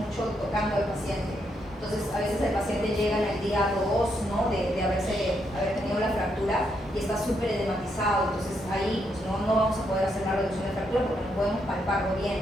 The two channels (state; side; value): normal; both; correlation 0.78